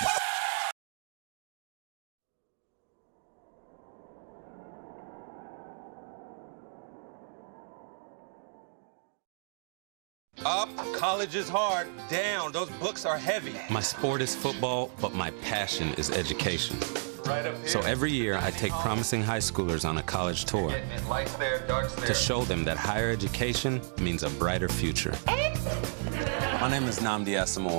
Up, college is hard. Down, those books are heavy. My sport is football, but my passion is education. Right up here. So every year I take promising high schoolers on a college tour Lights there, darks there. to show them that higher education means a brighter future. My name is Nnamdi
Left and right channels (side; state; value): left; silent; digital silence